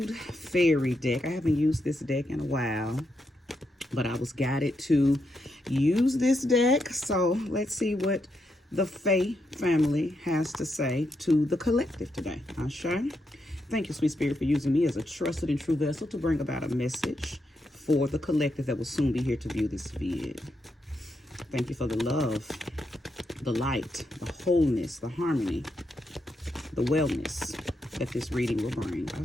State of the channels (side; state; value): both; normal; correlation 0.82